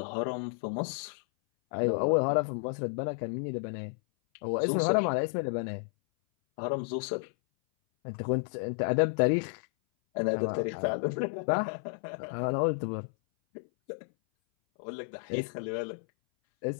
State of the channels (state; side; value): silent; right; 57 dB below the other